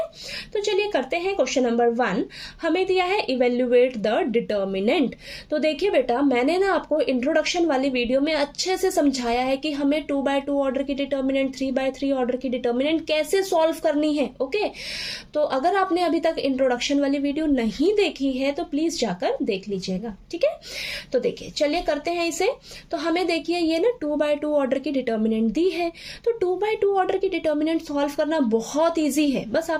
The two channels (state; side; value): identical; both; correlation 1.00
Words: तो चलिए करते हैं। क्वेश्चन नंबर 1 हमें दिया है इवेल्युएट द डिटर्मिनेंट। तो देखिए बेटा, मैंने ना आपको इंट्रोडक्शन वाली वीडियो में अच्छे से समझाया है कि हमें 2x2 ऑर्डर की डिटर्मिनेंट, 3x3 ऑर्डर की डिटर्मिनेंट कैसे सॉल्व करनी है, ओके। तो अगर आपने अभी तक इंट्रोडक्शन वाली वीडियो नहीं देखी है तो प्लीज जाकर देख लीजिएगा, ठीक है। तो देखिए चलिए करते हैं इसे। तो हमें देखिए ये ना 2x2 ऑर्डर की डिटर्मिनेंट दी है। तो 2x2 ऑर्डर की डिटर्मिनेंट सॉल्व करना बहुत ईजी है। बस